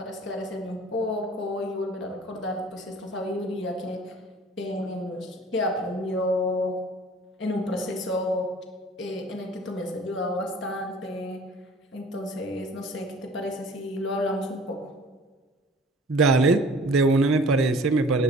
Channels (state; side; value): normal; both; correlation 0.48